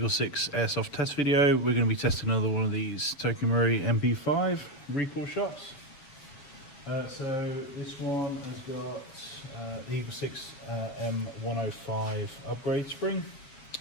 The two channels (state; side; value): late; right; 7.3 ms